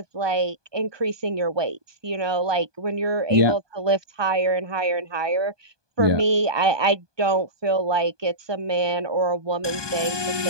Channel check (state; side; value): late; left; 1.2 ms